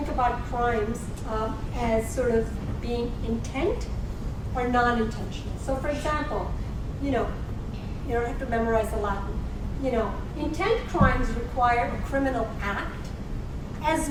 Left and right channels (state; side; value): identical; both; correlation 1.00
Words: about crimes as sort of being intent or non-intentional. So, for example, you don't have to memorize the Latin. Intent crimes require a criminal act as